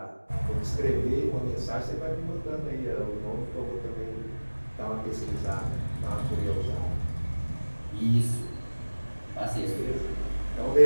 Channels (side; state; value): both; inverted; correlation -1.00